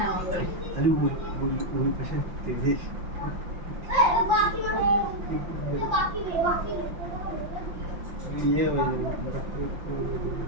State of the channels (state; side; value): late; left; 5.7 ms